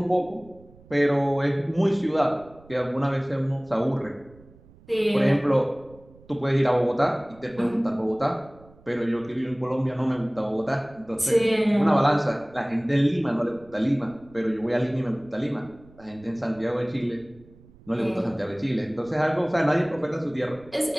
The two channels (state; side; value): noise; right; rumble, 25 dB below the sound